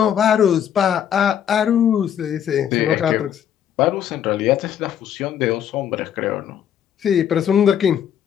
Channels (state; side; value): quieter; right; 9.4 dB